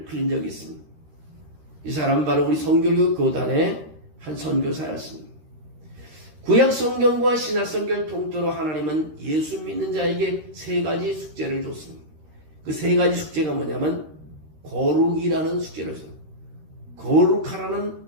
흘린 적이 있습니다. 이 사람은 바로 우리 성결교 교단의 한 선교사였습니다. 구약 성경과 신약 성경을 통틀어 하나님은 예수 믿는 자에게 세 가지 숙제를 줬습니다. 그 세 가지 숙제가 뭐냐면 거룩이라는 숙제를 줬습니다.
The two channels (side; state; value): left; late; 13 ms